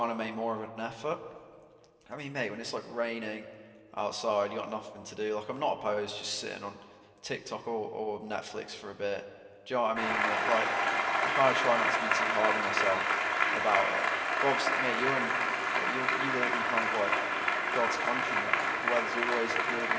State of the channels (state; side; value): identical; both; correlation 1.00